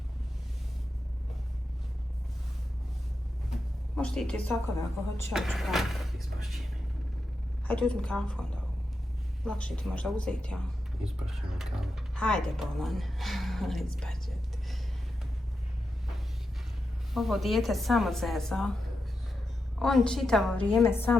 Možeš ti i ti sokove ako hoćeš, ja ću praviti. Ispašće mi. Hajde, uzmi kafu onda. Lakše ti možda uzeti, ja. Ispašće mi kavu. Hajde, bolan. Ispašće ti. Ovo dijete samo zeza. On čitavo vrijeme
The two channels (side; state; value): both; normal; correlation 0.88